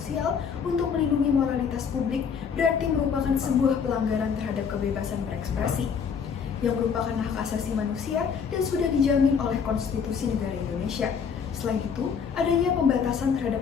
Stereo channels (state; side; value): quieter; right; 6.6 dB